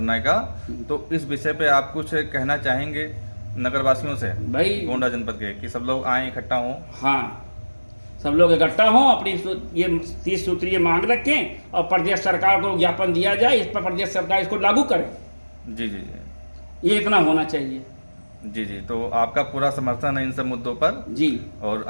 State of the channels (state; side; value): inverted; both; correlation -1.00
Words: का, तो इस विषय पे आप कुछ कहना चाहेंगे नगर वासियों से, भाई गोंडा जनपद के, कि सब लोग आए इकट्ठा हों? हाँ, सब लोग इकट्ठा हों, अपनी ये 30 सूत्रीय मांग रखें और प्रदेश सरकार को ज्ञापन दिया जाए, इस पर प्रदेश सरकार इसको लागू करे। जी जी जी, ये इतना होना चाहिए। जी जी। तो आपका पूरा समर्थन है इन सब मुद्दों पर जी। और